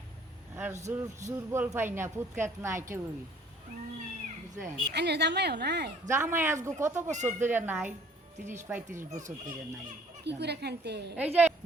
আর দুর্বল পাই না, পুতকাত নাই কেউই, বুঝলেন? আইনের জামাইও নাই? জামাই আজগো কত বছর ধরে নাই, 30-35 বছর ধরে নাই। কি করে খানতে? এই যে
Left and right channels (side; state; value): both; normal; correlation 0.57